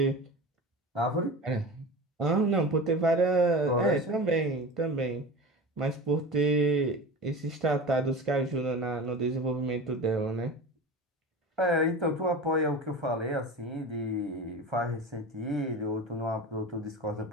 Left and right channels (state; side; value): normal; both; correlation 0.31